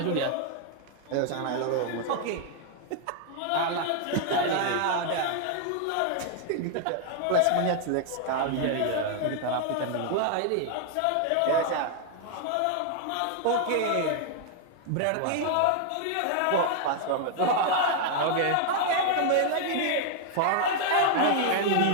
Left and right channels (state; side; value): different; both; correlation 0.00